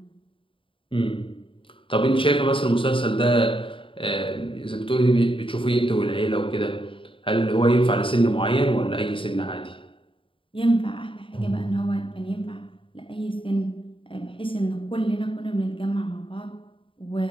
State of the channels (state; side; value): late; right; 0.25 ms